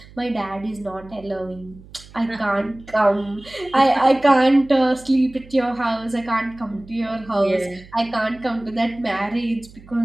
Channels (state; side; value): noise; right; hum, 21 dB below the sound